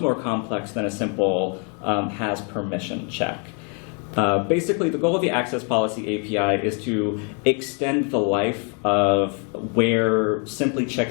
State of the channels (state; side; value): quieter; right; 38.1 dB